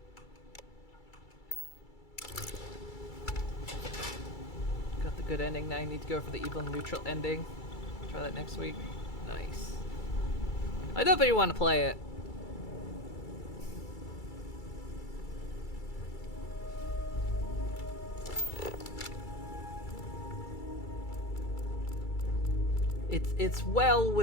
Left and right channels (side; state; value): right; late; 2.3 ms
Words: Got the good ending, now I need to go for the evil neutral ending. Try that next week. Nice. I definitely want to play it. It's well